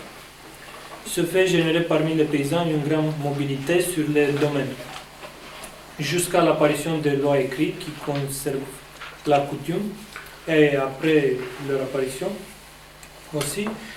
Ce fait générait parmi les paysans une grande mobilité sur les domaines, jusqu'à l'apparition des lois écrites qui conservent la coutume, et après leur apparition aussi,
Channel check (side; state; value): both; identical; correlation 1.00